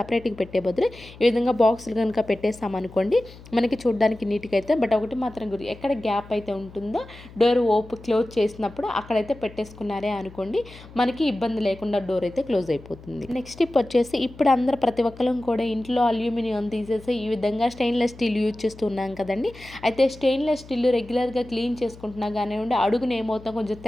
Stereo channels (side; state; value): left; noise; hum, 19 dB below the sound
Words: పెట్టే బదులు ఈ విధంగా బాక్సులు కనుక పెట్టేస్తామనుకోండి మనకి చూడడానికి నీట్గా అయితే. బట్ ఒకటి మాత్రం గురి, ఎక్కడ గ్యాప్ అయితే ఉంటుందో డోర్ క్లోజ్ చేసినప్పుడు అక్కడైతే పెట్టేసుకున్నారే అనుకోండి, మనకి ఇబ్బంది లేకుండా డోర్ అయితే క్లోజ్ అయిపోతుంది. నెక్స్ట్ టిప్ వచ్చేసి, ఇప్పుడు అందరూ ప్రతి ఒక్కరం కూడా ఇంట్లో అల్యూమినియం తీసేసి ఈ విధంగా స్టెయిన్లెస్ స్టీల్ యూజ్ చేస్తూ ఉన్నాం కదండి. అయితే స్టెయిన్లెస్ స్టీల్ రెగ్యులర్గా క్లీన్ చేసుకుంటున్నా కానివ్వండి, అడుగున ఏమవుతాం కొంచెం